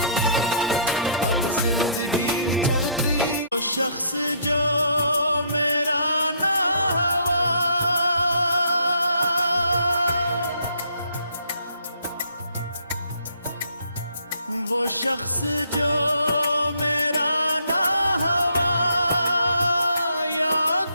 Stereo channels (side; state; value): both; inverted; correlation -0.65